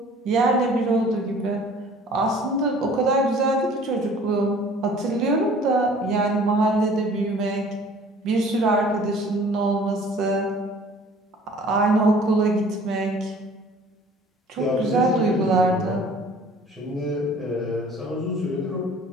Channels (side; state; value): both; normal; correlation 0.50